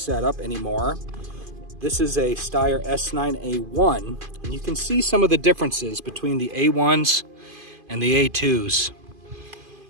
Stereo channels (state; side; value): late; left; 2.5 ms